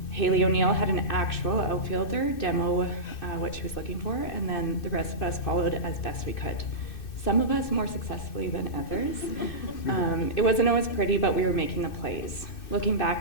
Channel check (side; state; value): right; late; 2.6 ms